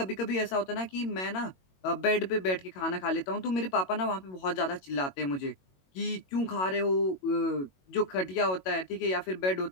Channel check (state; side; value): late; right; 22 ms